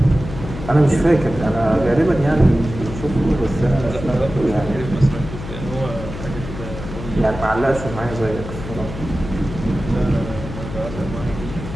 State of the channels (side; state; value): left; noise; hum, 10 dB below the sound